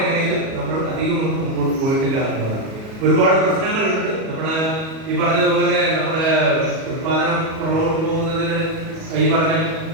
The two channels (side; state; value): left; late; 37 ms